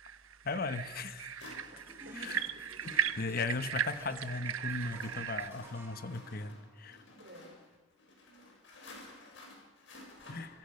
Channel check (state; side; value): normal; both; correlation 0.21